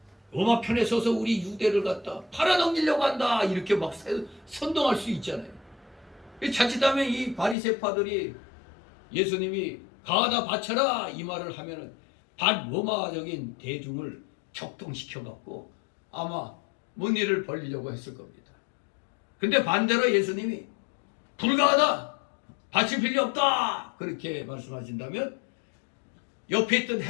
로마 편에 서서 우리 유대를 갖다 팔아넘기려고 한다 이렇게 막 선동할 수 있잖아요. 자칫하면 이 바리새파들이 예수님이 가하다 바쳐라 이 말을 하면은 반로마적인 대중을 격동시켜 갖고 아마 뭔 일을 벌리려고 했을 겁니다. 근데 반대로 예수님이 불가하다 바칠 필요 없다 그렇게 말씀하신다면 옆에 있던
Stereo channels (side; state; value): right; drops out; at 7.6 s